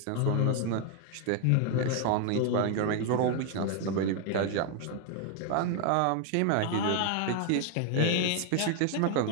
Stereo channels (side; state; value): both; different; correlation 0.00